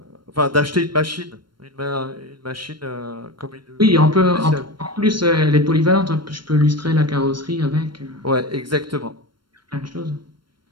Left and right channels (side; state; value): left; late; 0.72 ms